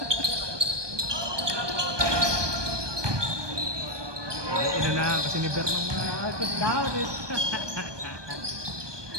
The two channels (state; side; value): late; left; 1.2 ms